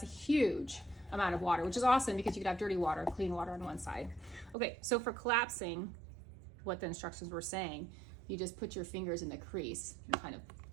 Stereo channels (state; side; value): drops out; left; at 4.5 s